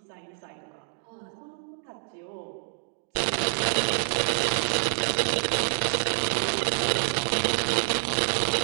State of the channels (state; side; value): silent; left; 60 dB below the other